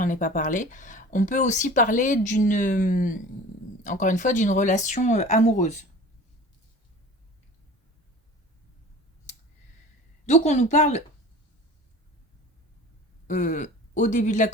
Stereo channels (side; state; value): both; normal; correlation 0.40